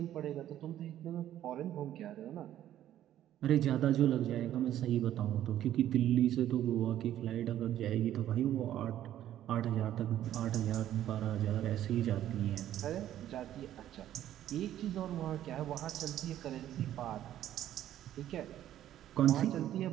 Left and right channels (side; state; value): left; quieter; 12.1 dB